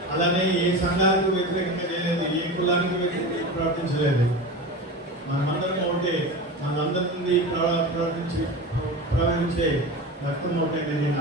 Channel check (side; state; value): both; normal; correlation 0.28